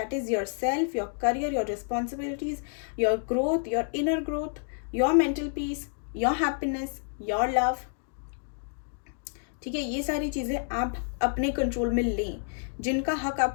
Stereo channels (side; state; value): right; silent; digital silence